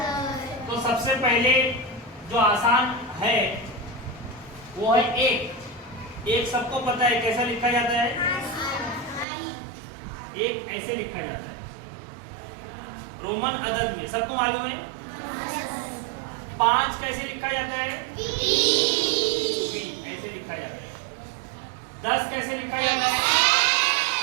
तो सबसे पहले जो आसान है वो है एक सबको पता है कैसा लिखा जाता है, एक ऐसे लिखा जाता है रोमन अदद में, सबको मालूम है। 5 कैसे लिखा जाता है, ऐसे लिखा जाता है। 10 कैसे लिखा जाता है,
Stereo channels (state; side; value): drops out; left; at 9.2 s